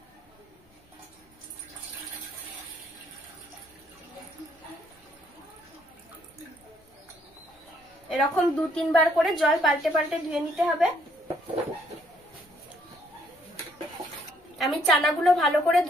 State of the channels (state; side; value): normal; both; correlation 0.68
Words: এরকম 2-3 বার করে জল পাল্টে পাল্টে ধুয়ে নিতে হবে। আমি চানাগুলো ভালো করে